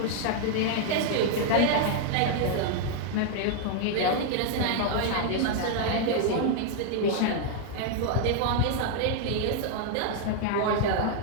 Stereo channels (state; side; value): different; both; correlation 0.00